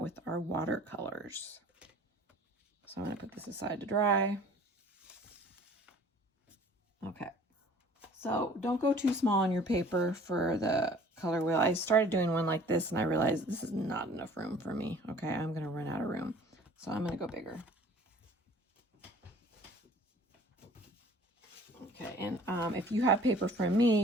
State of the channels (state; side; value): normal; both; correlation 0.51